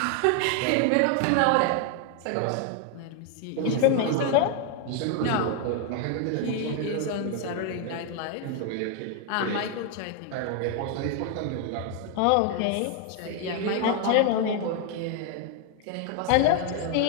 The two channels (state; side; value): different; both; correlation 0.01